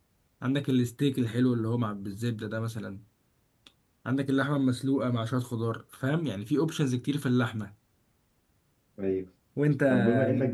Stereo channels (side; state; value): both; identical; correlation 1.00